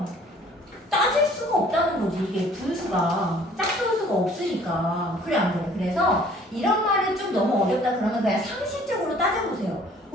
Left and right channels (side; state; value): both; normal; correlation 0.54